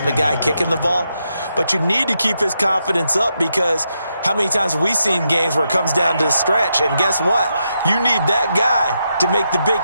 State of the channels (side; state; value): both; inverted; correlation -0.83